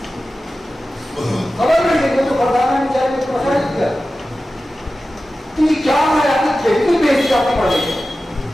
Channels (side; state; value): both; normal; correlation 0.94